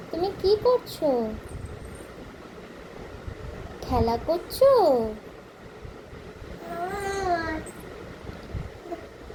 তুমি কি করছো? খেলা করছো?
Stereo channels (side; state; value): both; identical; correlation 1.00